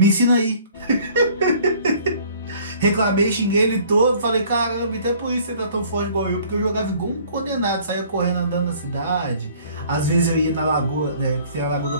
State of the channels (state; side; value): inverted; both; correlation -0.54